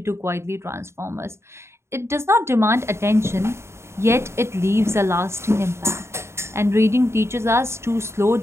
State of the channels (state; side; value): late; left; 0.13 ms